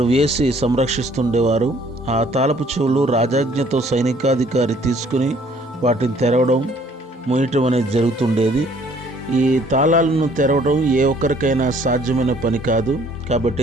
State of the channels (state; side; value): normal; both; correlation 0.59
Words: వేసి సంరక్షిస్తుండేవారు. ఆ తాళపు చెవులు రాజాజ్ఞతో సైనికాధికారి తీసుకుని వాటిని తెరవడం, మూయటం అనేది జరుగుతుండేది. ఈ తాళాలను తెరవడం ఏ ఒక్కరికైనా సాధ్యమైన పని కాదు.